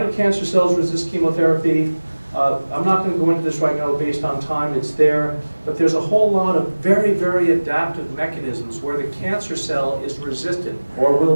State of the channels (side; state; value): both; inverted; correlation -1.00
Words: cancer cells resist chemotherapy? I'm not going to go into this right now based on time, it's there, but there's a whole lot of very, very adaptive mechanisms where the cancer cell is resistant or